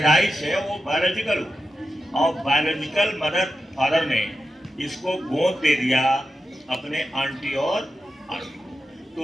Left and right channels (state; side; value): normal; both; correlation 0.90